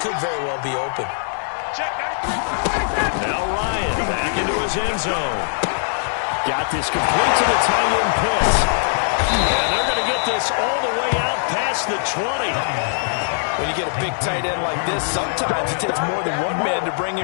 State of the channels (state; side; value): silent; right; digital silence